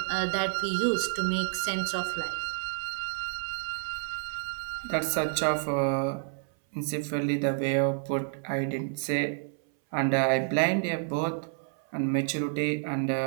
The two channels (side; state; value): left; silent; 58 dB below the other